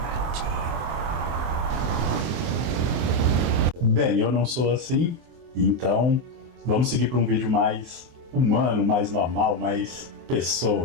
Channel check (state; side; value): late; left; 24 ms